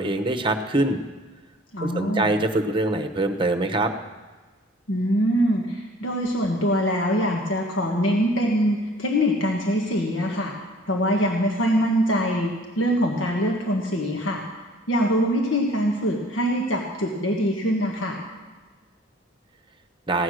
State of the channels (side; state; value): both; normal; correlation 0.52